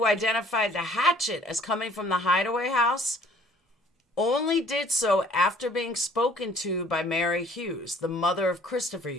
identified the hatchet as coming from the hideaway house only did so after being spoken to by Mary Hughes, the mother of Christopher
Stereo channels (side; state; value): both; normal; correlation 0.56